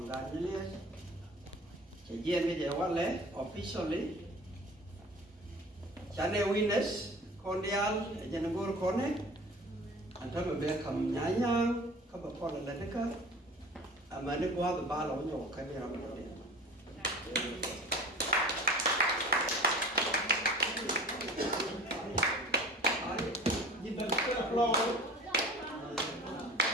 gan Nyɛli chỉ riêng cái gì vậy lẽ officially chane witness cordial janagor kone anta mbe kam Nyang ka ba kola la deka amane ko ha ba lo nyo ka ni ra ba de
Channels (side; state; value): both; normal; correlation 0.41